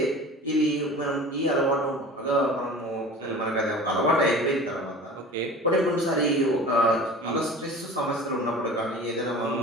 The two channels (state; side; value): normal; both; correlation 0.39